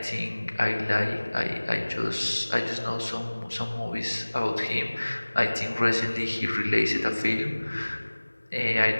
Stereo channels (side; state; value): both; inverted; correlation -1.00